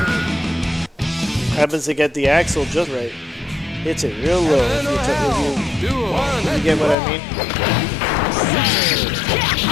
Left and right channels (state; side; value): drops out; right; at 7.0 s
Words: happens to get the axle just right. Hits it real low. If you get what I mean?